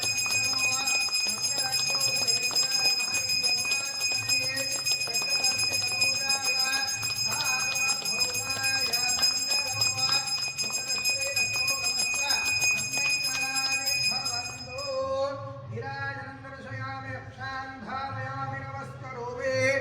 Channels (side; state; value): both; identical; correlation 1.00